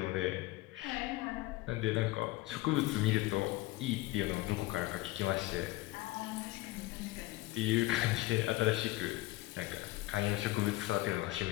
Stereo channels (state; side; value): quieter; right; 18.8 dB